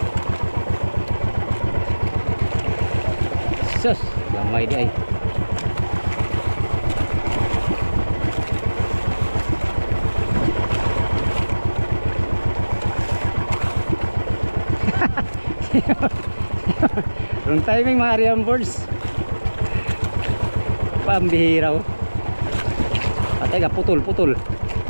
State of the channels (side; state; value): both; inverted; correlation -1.00